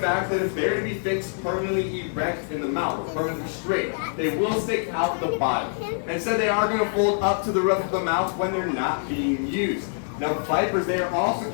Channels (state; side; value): silent; right; digital silence